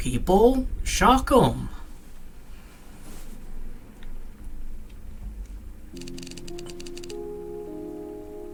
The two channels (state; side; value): identical; both; correlation 1.00